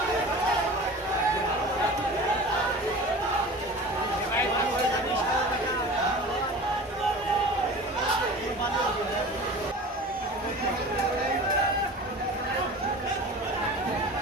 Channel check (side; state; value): both; normal; correlation 0.37